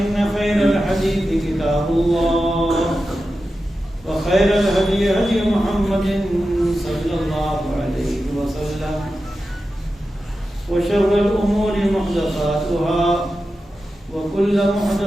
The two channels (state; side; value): normal; both; correlation 0.92